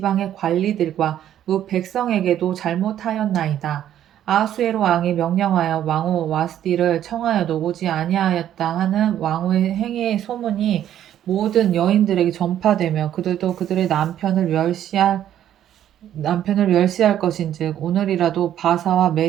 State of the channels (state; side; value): quieter; left; 11.1 dB